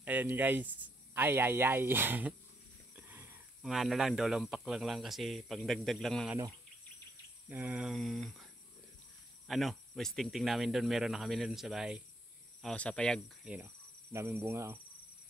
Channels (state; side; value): normal; both; correlation 0.74